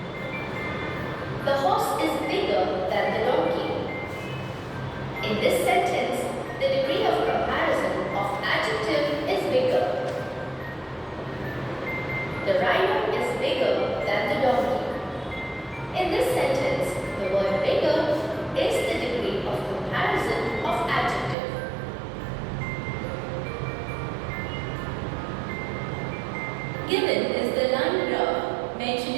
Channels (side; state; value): left; drops out; at 21.4 s